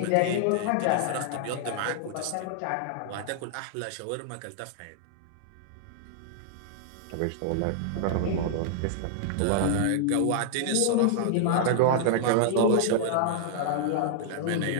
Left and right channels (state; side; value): different; both; correlation -0.01